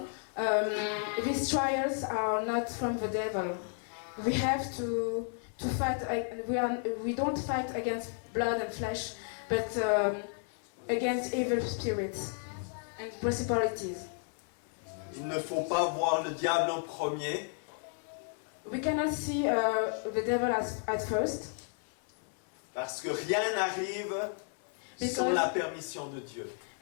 these trials are not from the devil. We have to fight. We don't fight against blood and flesh, but against evil spirits and principalities. Il ne faut pas voir le diable en premier, We cannot see the devil at first, parce que rien n'arrive sans la permission de Dieu.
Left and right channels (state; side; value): silent; right; 56 dB below the other